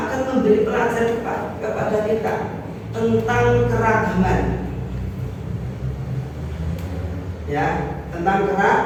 memberi pelajaran kepada kita tentang keragaman. Ya, tentang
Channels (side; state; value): both; identical; correlation 1.00